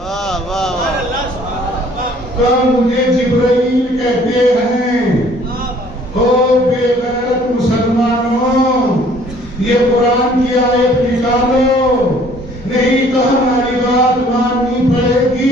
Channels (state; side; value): normal; both; correlation 0.57